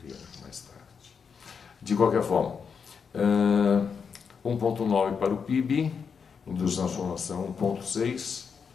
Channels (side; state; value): right; quieter; 6.2 dB